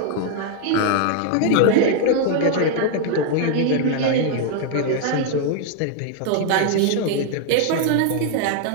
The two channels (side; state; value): both; different; correlation 0.00